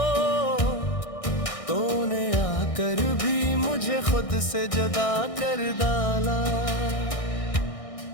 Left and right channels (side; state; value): right; late; 1.6 ms